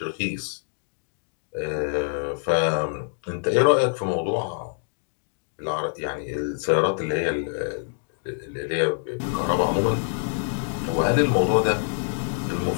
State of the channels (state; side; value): silent; right; digital silence